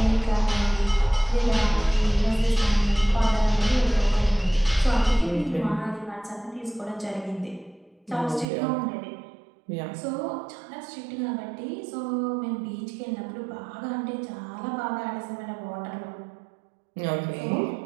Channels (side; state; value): left; drops out; at 8.5 s